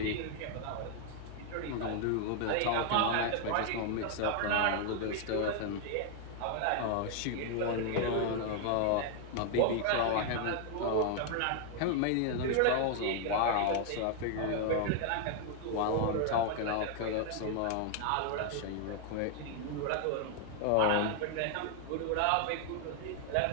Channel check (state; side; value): different; both; correlation 0.00